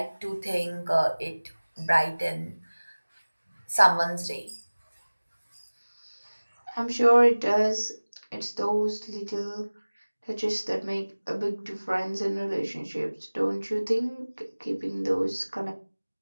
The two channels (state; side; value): inverted; both; correlation -1.00